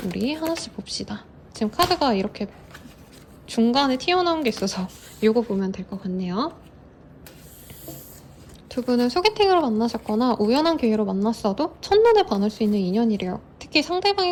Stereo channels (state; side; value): identical; both; correlation 1.00